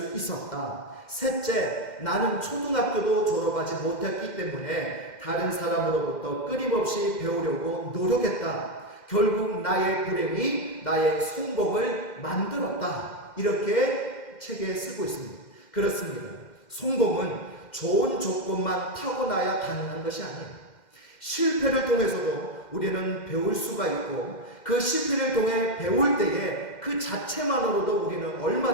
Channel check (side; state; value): right; late; 2.1 ms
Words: 있었다. 셋째, 나는 초등학교도 졸업하지 못했기 때문에 다른 사람으로부터 끊임없이 배우려고 노력했다. 결국 나의 불행이 나의 성공을 만들었다. 이렇게 책에 쓰고 있습니다. 그렇습니다. 성공은 좋은 조건만 타고나야 가능한 것이 아니에요. 실패를 통해서도 우리는 배울 수가 있고 그 실패를 통해 배울 때에 그 자체만으로도 우리는